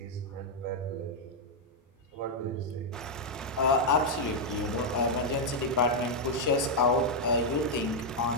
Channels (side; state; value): both; normal; correlation -0.02